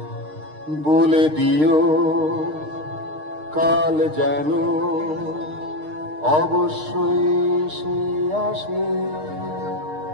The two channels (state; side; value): late; left; 6.5 ms